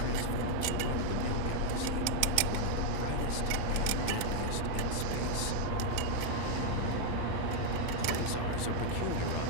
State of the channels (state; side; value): different; both; correlation 0.00